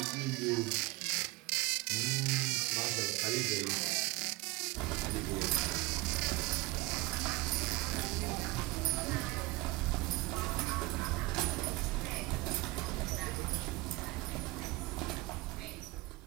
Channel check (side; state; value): left; quieter; 21.7 dB